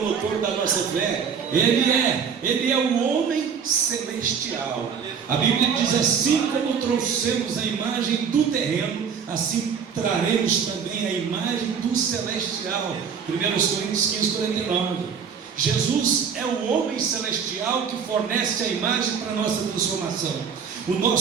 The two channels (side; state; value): left; quieter; 6.8 dB